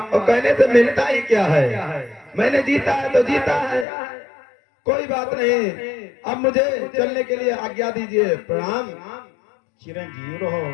और कहने से मिलता ही क्या है। मैंने जीता है तो जीता है, कोई बात नहीं। अब मुझे चलने के लिए आज्ञा दीजिए। प्रणाम। चिरंजीव रहो।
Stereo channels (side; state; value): right; drops out; at 3.9 s